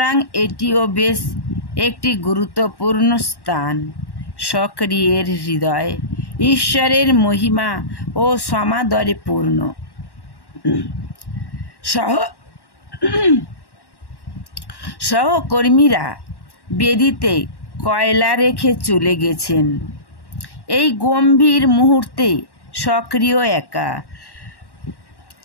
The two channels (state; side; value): late; right; 1.1 ms